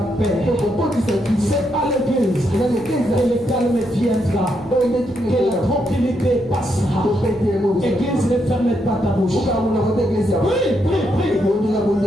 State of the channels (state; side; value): noise; left; hum, 23 dB below the sound